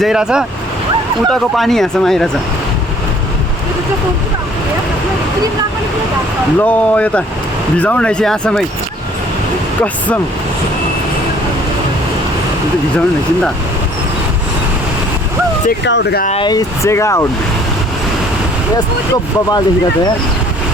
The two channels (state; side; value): normal; both; correlation 0.57